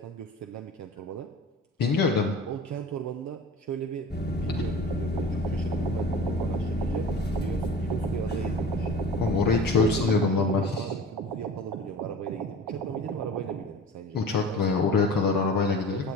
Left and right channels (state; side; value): normal; both; correlation 0.38